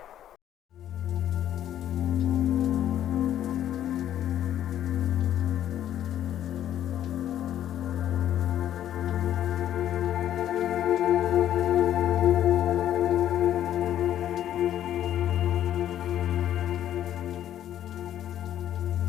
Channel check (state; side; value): quieter; right; 11.3 dB